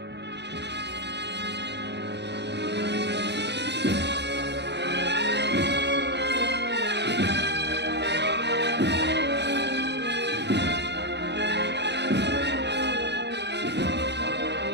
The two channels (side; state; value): left; late; 0.50 ms